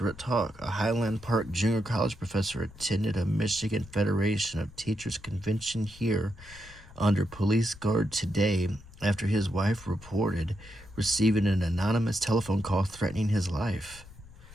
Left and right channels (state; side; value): noise; left; rumble, 19 dB below the sound